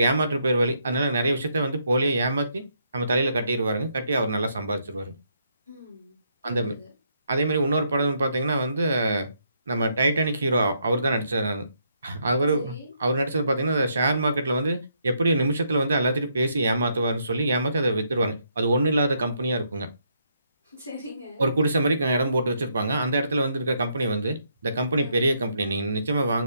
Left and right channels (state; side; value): inverted; both; correlation -0.75